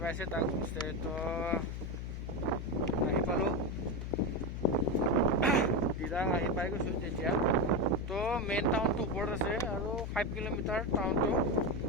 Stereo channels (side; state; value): left; noise; hum, 5 dB below the sound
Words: পাইছে তাক হোমষ্টে। তো আহি পালোঁ, দিৰাং আহি পাই গৈছোঁ তেতিয়া। তো মেইন টাউনটো ওপৰত আছে আৰু 5 কিলোমিটাৰ টাউনটো।